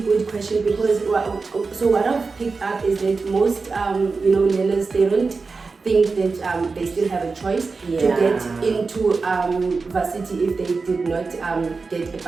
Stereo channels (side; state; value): left; quieter; 4.3 dB